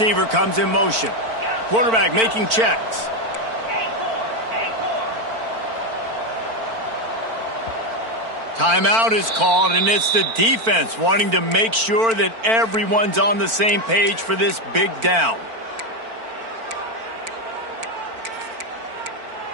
comes in motion. Quarterback making checks. Timeout is called, and it's the defense wanting to make sure that everyone's on the same page for this big down.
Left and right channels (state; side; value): late; left; 4.4 ms